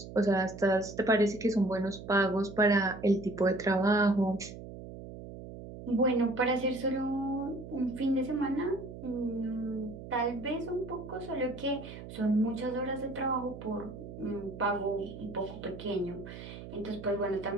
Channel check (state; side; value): noise; right; hum, 12 dB below the sound